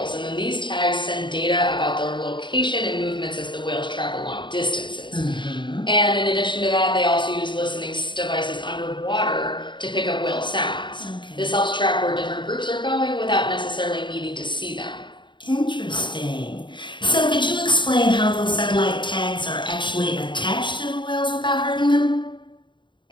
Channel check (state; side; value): late; right; 0.23 ms